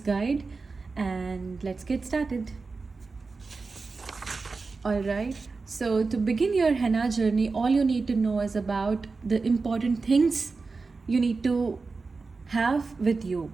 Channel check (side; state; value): left; quieter; 4.2 dB